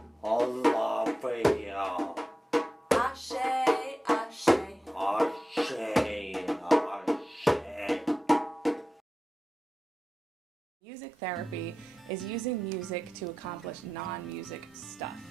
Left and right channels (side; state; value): both; normal; correlation 0.93